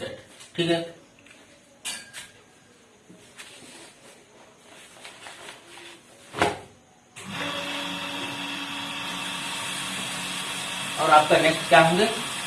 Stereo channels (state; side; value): identical; both; correlation 1.00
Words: ठीक है, और आपका नेक्स्ट क्या होंगे,